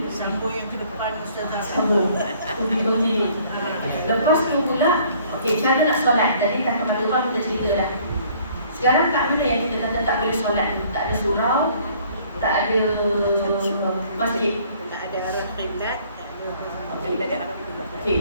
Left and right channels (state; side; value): inverted; both; correlation -0.58